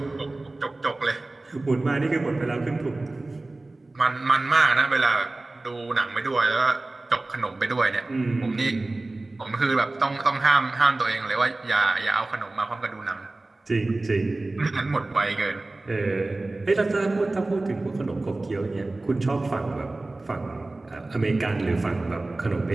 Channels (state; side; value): quieter; left; 3.0 dB